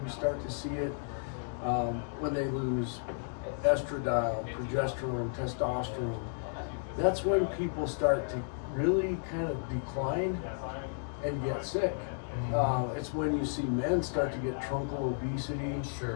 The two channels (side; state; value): right; silent; digital silence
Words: start to see it when they lose estradiol, progesterone, testosterone. That's when people start to really kind of decline and get sick. It's when you see men start to get truncal obesity,